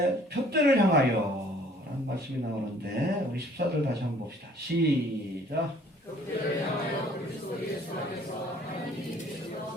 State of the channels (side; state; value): both; normal; correlation 0.56